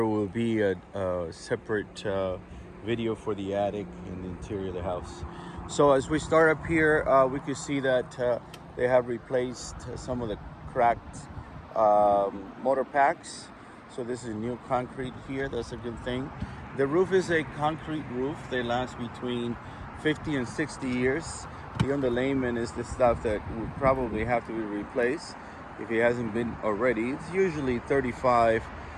will be a separate video for the attic and the interior of the house. So as we start up here, we can see that they have replaced some of the cracked motor packs. So this is new concrete here. That's a good thing. The roof is a concrete roof. They last between 50 and 60 years. The underlayment is the stuff that would probably have to be replaced if it hasn't been already. It's usually 35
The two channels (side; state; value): both; identical; correlation 1.00